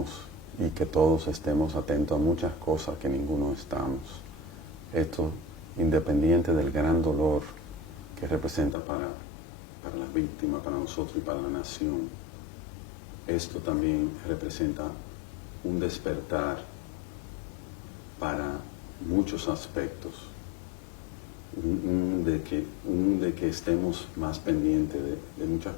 y que todos estemos atentos a muchas cosas que ninguno estamos. Esto independiente del gran dolor que representa para las víctimas, para nosotros y para la nación. Esto también representa un despertar para muchos aspectos, de que estemos más pendientes de muchas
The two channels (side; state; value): right; drops out; at 8.8 s